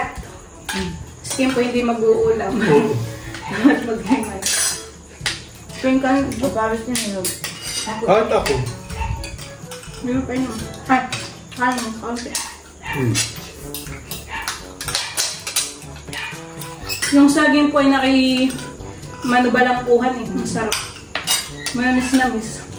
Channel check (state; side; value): identical; both; correlation 1.00